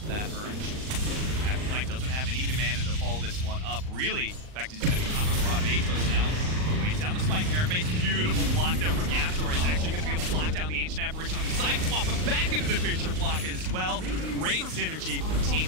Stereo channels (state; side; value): late; left; 39 ms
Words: that Urge. Afterlife doesn't have any mana to follow this one up. Really, in fact, he's going to be top of the Rod of Atos now. Waits down the Spike Carapace. Beautiful block there from Yaptor. He's actually going to be able to block down the Ancient Apparition on the side, swap him back into the Fissure block as well. Great synergy for Team